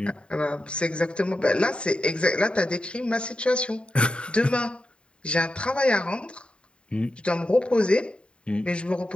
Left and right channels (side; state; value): right; late; 0.055 ms